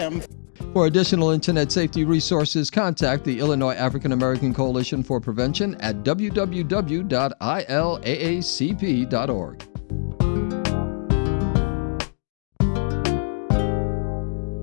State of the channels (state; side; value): silent; right; digital silence